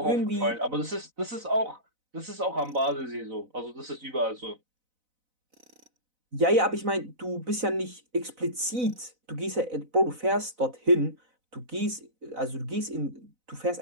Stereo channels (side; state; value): left; late; 4.0 ms